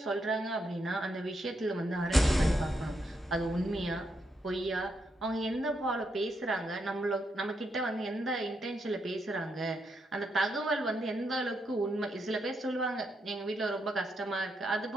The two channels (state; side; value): normal; both; correlation 0.80